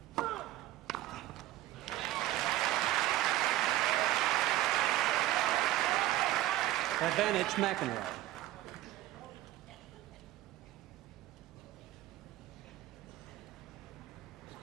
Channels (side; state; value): left; quieter; 15.1 dB